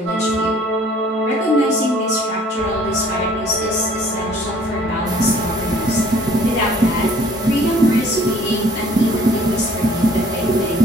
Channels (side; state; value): both; normal; correlation 0.56